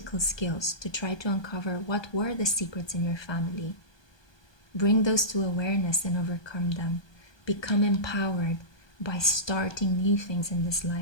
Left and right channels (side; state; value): right; late; 1.2 ms